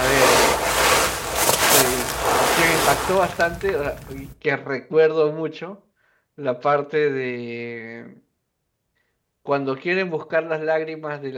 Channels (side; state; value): both; identical; correlation 1.00